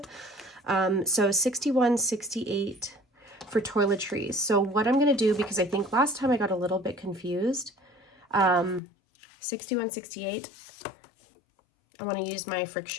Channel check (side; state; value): right; drops out; at 8.8 s